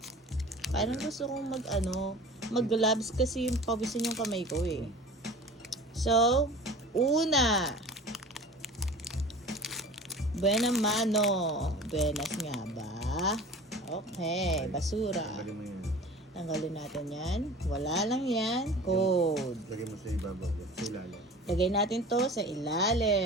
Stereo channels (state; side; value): normal; both; correlation 0.39